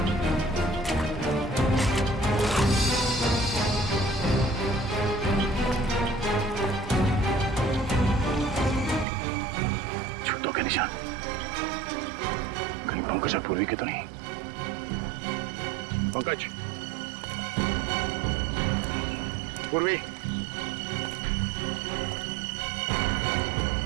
जूतों के निशान कहीं पंकज और पूर्वी के तो नहीं। पंकज, पूर्वी,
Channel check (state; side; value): drops out; left; at 9.1 s